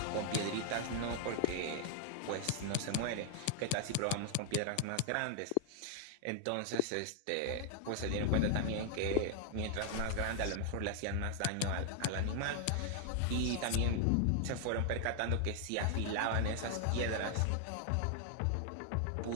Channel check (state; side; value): different; both; correlation 0.00